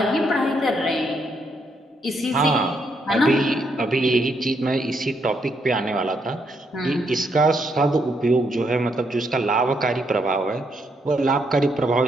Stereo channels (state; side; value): normal; both; correlation 0.76